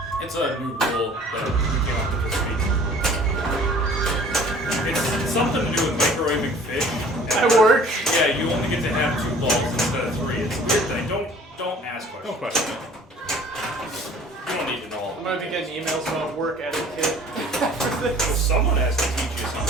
It's a new rule that we came up with this week. It's something to do with microwaving fish. At work? Yeah, you only get to have 2 balls instead of 3. It's a weird thing. Don't ask questions. No question. You don't need to know all I'm of gonna be getting emails about work etiquette after it. this. Well, someone has to teach you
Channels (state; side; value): normal; both; correlation 0.50